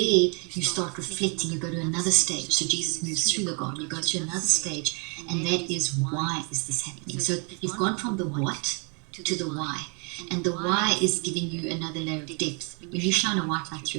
start reflecting. You go to another stage. So Jesus moves through the garden. You go to another stage, and that is, why is this happening? So you've gone from the what to the why. And the why is giving you another layer of depth. When you shine a white light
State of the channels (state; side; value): quieter; left; 35.6 dB